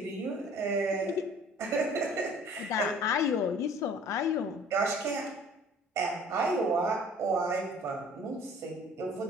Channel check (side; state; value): both; normal; correlation 0.50